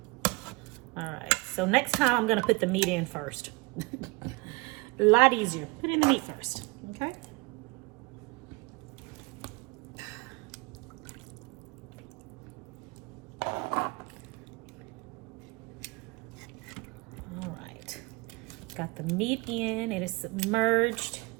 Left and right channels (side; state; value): left; quieter; 26.3 dB